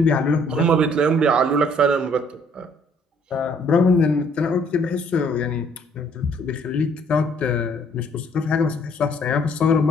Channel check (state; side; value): normal; both; correlation 0.62